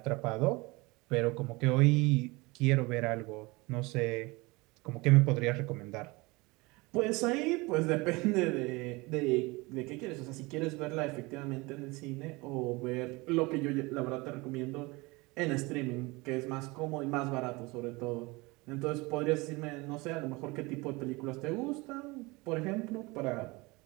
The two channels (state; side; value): quieter; left; 24.2 dB